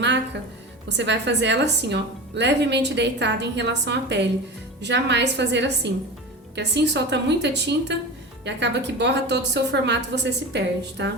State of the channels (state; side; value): normal; both; correlation 0.28